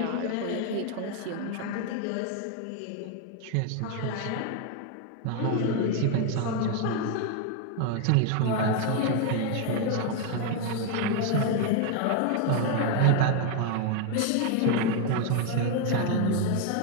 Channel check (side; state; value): both; different; correlation 0.01